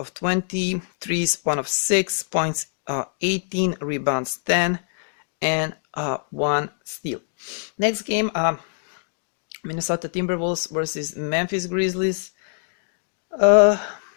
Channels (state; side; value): silent; right; digital silence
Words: 20, threes 1 of 6 points, 18 rebounds, 10 and 1 steal. Next game, Minnesota Timberwolves versus Memphis Grizzlies.